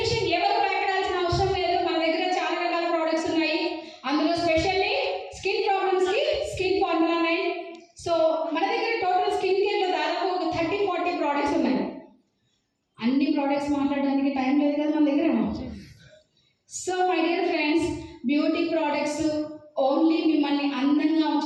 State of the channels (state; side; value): identical; both; correlation 1.00